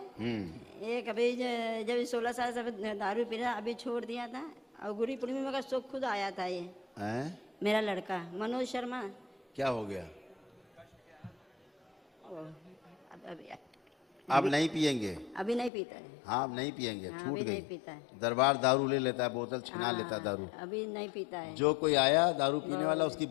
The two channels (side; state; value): right; drops out; at 15.7 s